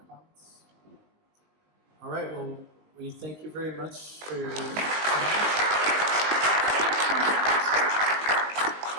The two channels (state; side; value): late; left; 19 ms